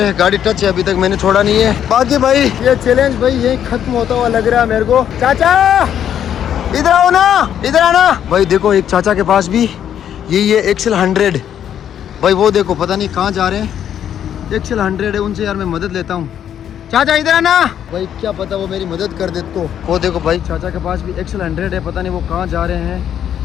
गाड़ी टच है, अभी तक मैंने छोड़ा नहीं है। बाकी भाई ये चैलेंज भाई यही खत्म होता हुआ लग रहा है मेरे को। चाचा इधर आओ ना, इधर आना भाई। देखो एक चाचा के पास भी ये एक्सेल 100 भाई, वो देखो पता नहीं कहाँ जा रहे हैं। एक्सेल 100 है, उनसे यार मैं मदद लेता हूँ। चाचा इधर आना भाई, क्या पता वो मेरी मदद कर दे तो। वो देखो भाई चाचा के पास भी एक्सेल 100 है, पता नहीं वो कहाँ जा रहे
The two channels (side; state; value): right; quieter; 9.7 dB